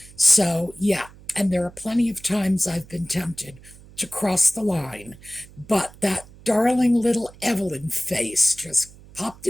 So, yeah, and there are plenty of times I've been tempted to cross the line, but that darling little Evelyn face just popped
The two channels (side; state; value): right; noise; hum, 22 dB below the sound